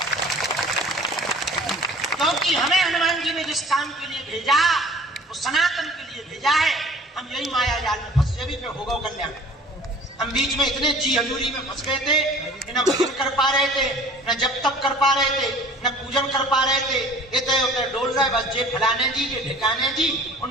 क्योंकि हमें हनुमान जी ने जिस काम के लिए भेजा वो सनातन के लिए भेजा है। हम यही माया जाल में फंसे भी होगा कल्याण। हम बीच में इतने जी हजूरी में फंस गए थे, न भजन कर पा रहे थे, न जप तप कर पा रहे थे, न पूजन कर पा रहे थे। इतने उतने डोल रहे, बस जे फलाने जी जे ढिकाने जी,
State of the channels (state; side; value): normal; both; correlation 0.47